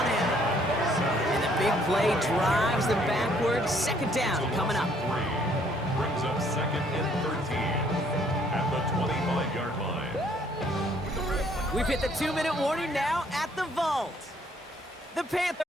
him. And the big play drives them backwards. Second down coming up. Brings up second and 13 at the 25-yard line. We've hit the 2-minute warning now at the vault. The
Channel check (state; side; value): normal; both; correlation 0.64